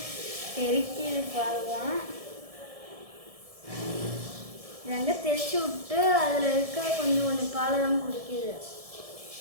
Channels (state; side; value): late; left; 1.7 ms